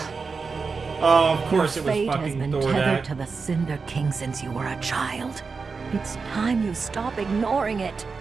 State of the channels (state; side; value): quieter; left; 4.8 dB